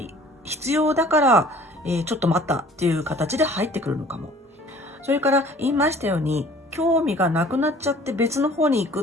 必要だから、ちょっと待ったっていう形で入ってくるのかも。それから言いましたように、興味がなくなっちゃって別の方に行く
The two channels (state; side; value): normal; both; correlation 0.51